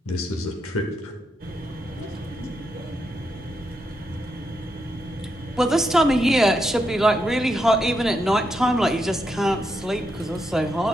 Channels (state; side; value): normal; both; correlation 0.82